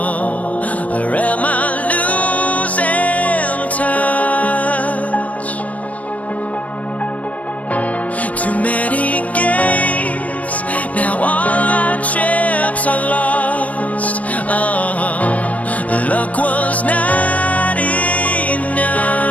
or am I losing touch? Too many games, now all our chips are lost. Oh, luck was not enough.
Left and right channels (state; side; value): late; right; 0.070 ms